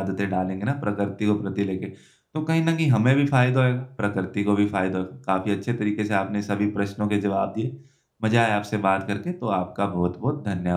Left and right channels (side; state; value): both; identical; correlation 1.00